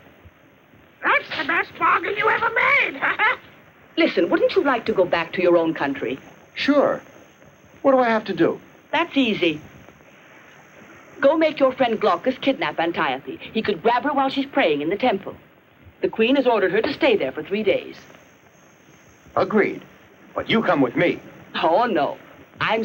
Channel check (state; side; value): identical; both; correlation 1.00